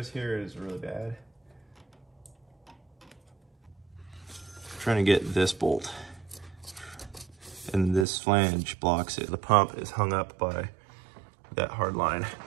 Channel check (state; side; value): drops out; left; at 8.1 s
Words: here is really bad. I'm trying to get this bolt, and this flange blocks it. The pump is hung up by that hard line